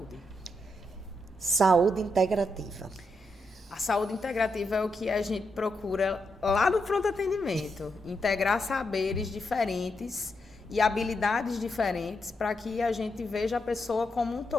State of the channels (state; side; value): normal; both; correlation 0.83